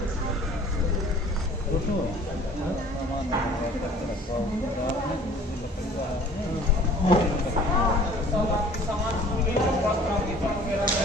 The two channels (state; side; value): normal; both; correlation 0.49